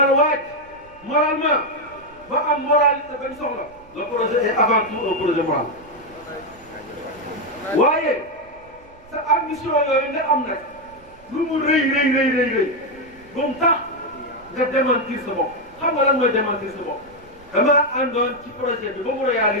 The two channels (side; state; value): right; noise; rumble, 26 dB below the sound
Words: waaj moralement ba am moralité bañ soxla le projet est avant tout un projet moral waaye sa ambition yooyu nga am nag lu mu rëy ba mu tax nga démentir sa bopp xam nga lan mooy démentir sa bopp damaa àndoon ci projet bi ba mu